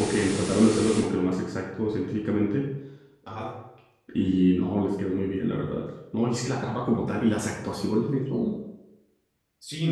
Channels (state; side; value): identical; both; correlation 1.00